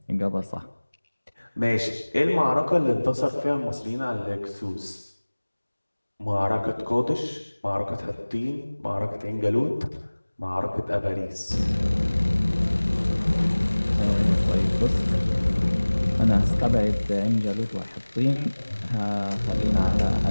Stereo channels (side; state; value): both; inverted; correlation -1.00